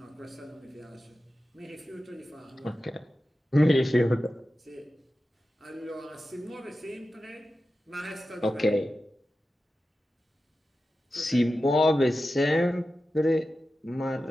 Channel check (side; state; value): both; normal; correlation 0.93